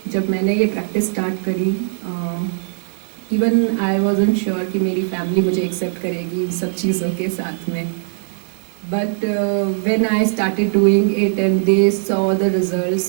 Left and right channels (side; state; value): left; silent; digital silence